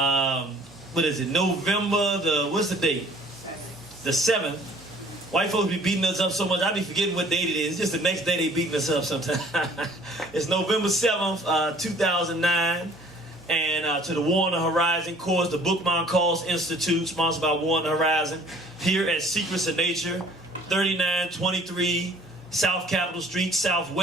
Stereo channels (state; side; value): normal; both; correlation 0.54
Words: what is it, November, what's the date? The 7th. White folks be beating us up so much, I be forgetting what date it is. It's just the next day they beating us up sometimes. It's November 7th, 2009. And to the War on the Horizon course, the Bookman Calls Institute, sponsored by War on the Horizon, here at Secrets of Nature, 3923 South Capitol Street,